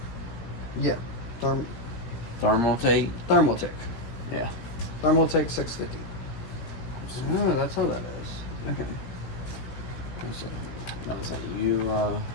yeah, Thermaltate? Thermaltake. Yeah. Thermaltake 650. Oh, that's how that is. Okay. Let's see, you,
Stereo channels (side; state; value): right; late; 16 ms